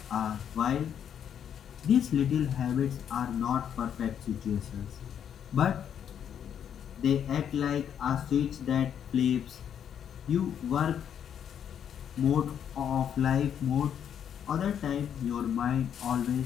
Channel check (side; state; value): right; quieter; 8.8 dB